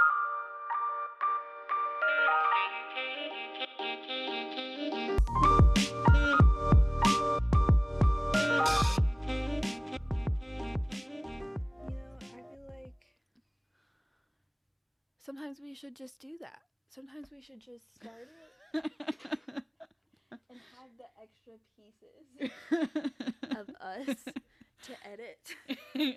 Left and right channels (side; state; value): both; identical; correlation 1.00